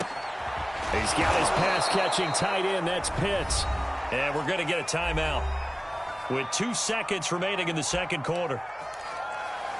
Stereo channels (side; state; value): both; identical; correlation 1.00